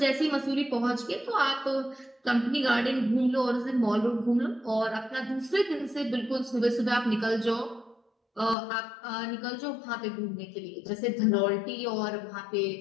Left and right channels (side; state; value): right; drops out; at 8.6 s